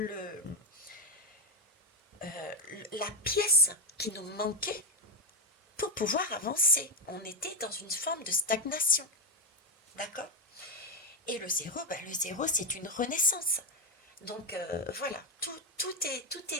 la pièce qui nous manquait pour pouvoir avancer. On était dans une forme de stagnation. D'accord? Et le 0, le 0, c'est une renaissance. Donc voilà, tout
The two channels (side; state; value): both; normal; correlation 0.09